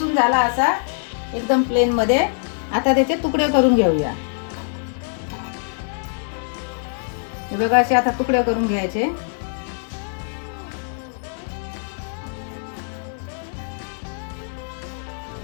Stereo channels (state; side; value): silent; right; digital silence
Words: झाला असा एकदम प्लेन मध्ये। आता त्याचे तुकडे करून घेऊया। हे बघा असे आता तुकडे करून घ्यायचे।